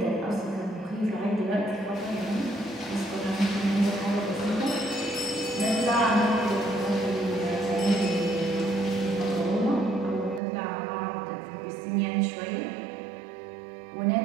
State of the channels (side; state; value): left; drops out; at 10.4 s